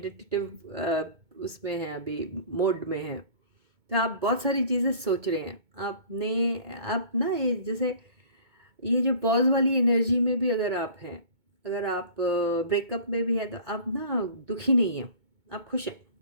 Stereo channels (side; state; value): left; late; 2.2 ms